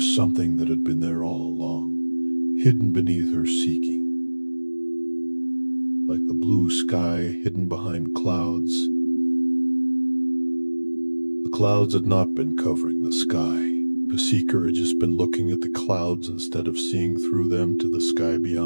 something that had been there all along, hidden beneath her seeking. Like the blue sky hidden behind clouds, the clouds had not been covering the sky. The seeker had just been looking at the clouds instead of seeing through them to the sky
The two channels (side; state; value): both; inverted; correlation -1.00